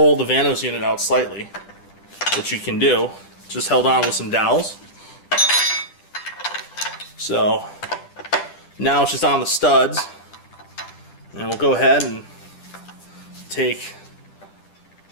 the Vanos unit out slightly, which you can do. Just held on with some dowels. So now it's just on the studs, and we'll go ahead and take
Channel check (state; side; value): late; right; 10 ms